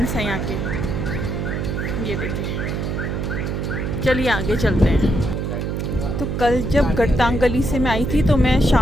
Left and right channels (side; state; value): right; noise; hum, 2 dB below the sound